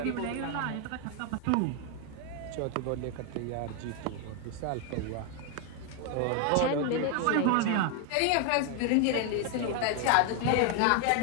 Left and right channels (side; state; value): both; different; correlation 0.01